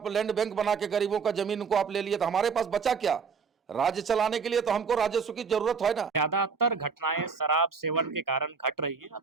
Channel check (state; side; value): quieter; left; 5.6 dB